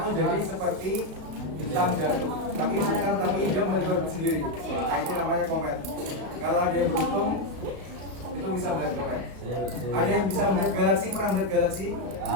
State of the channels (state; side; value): late; left; 35 ms